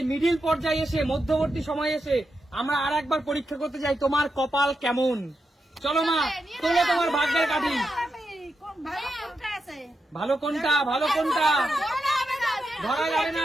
মিডিল পর্যায়ে এসে, মধ্যবর্তী সময় এসে আমরা আর একবার পরীক্ষা করতে চাই তোমার কপাল কেমন। চলো মা, তোলো তোমার ভাগ্যের কাঠি। ভালো কোনটা, ভালো কোনটা ধরা যাবে না,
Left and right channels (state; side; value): normal; both; correlation 0.87